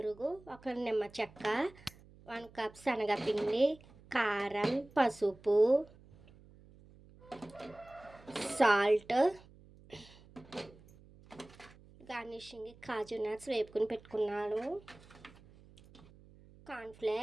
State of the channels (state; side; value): noise; right; hum, 23 dB below the sound